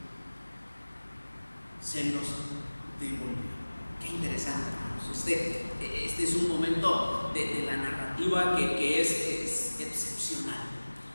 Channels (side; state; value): both; inverted; correlation -1.00